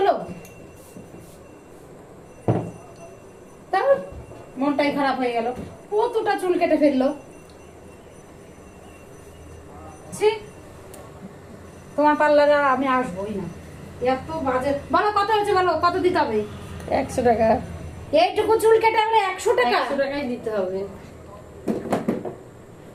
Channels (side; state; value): both; identical; correlation 1.00